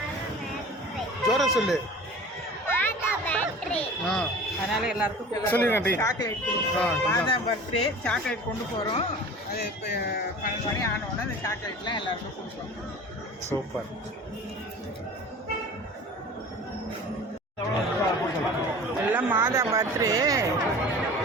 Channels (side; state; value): both; normal; correlation 0.39